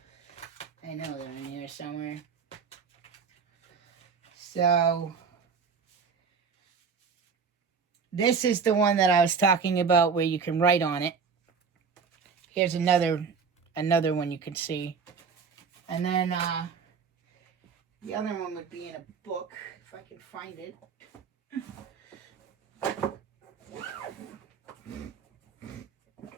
I know they're in here somewhere. So this is the one that I was talking about where you can write on it. Here's another one you can see. And then the other one would be in a book, if I can find it.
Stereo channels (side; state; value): left; quieter; 5.7 dB